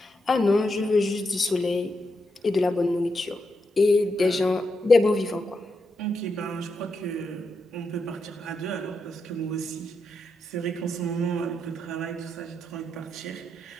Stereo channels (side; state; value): both; normal; correlation 0.84